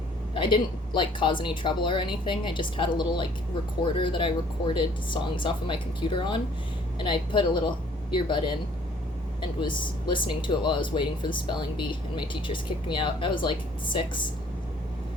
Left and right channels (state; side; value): normal; both; correlation 0.58